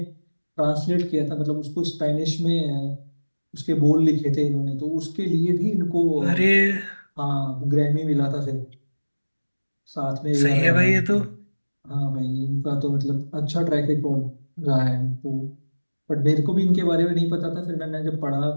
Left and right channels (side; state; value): both; inverted; correlation -1.00